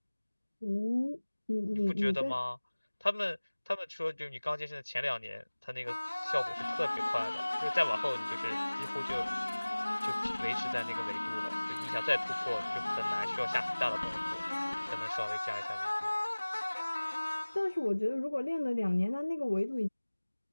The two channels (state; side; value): inverted; both; correlation -1.00